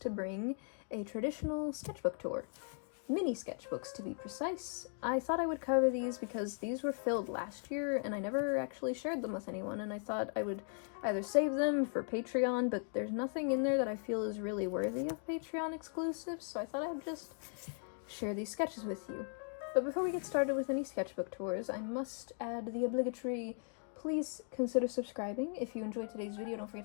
bring a traditional sketchbook tour. Mini sketchbooks, to be precise. I thought I would cover these because these were filled last year and I never actually shared them with anyone, and I thought I would either save them for Patreon, but there's nothing in there that I feel is really worthy of Patreon exclusives, so I thought I'd just share these sketches with you. But before we get started with any sketchbook tours, I must add the obligatory please consider subscribing. If you enjoyed today's video, don't forget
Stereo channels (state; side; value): silent; right; 52 dB below the other